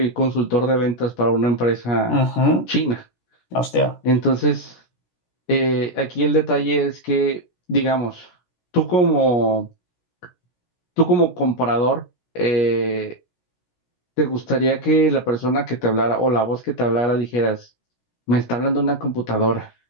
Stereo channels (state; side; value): late; right; 17 ms